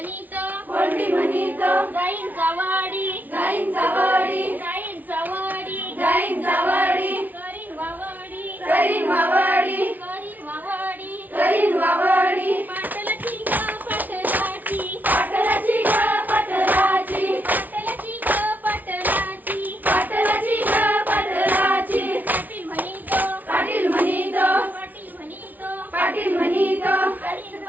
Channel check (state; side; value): late; left; 0.079 ms